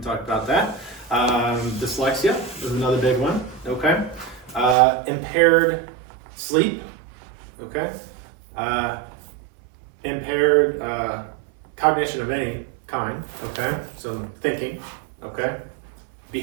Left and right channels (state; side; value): drops out; left; at 4.8 s